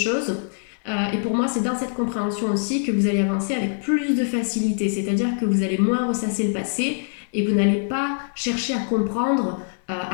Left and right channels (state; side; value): silent; right; 63 dB below the other